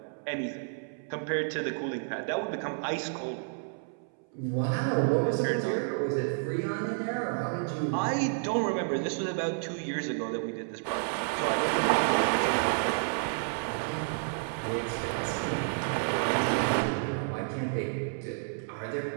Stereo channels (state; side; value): silent; left; 57 dB below the other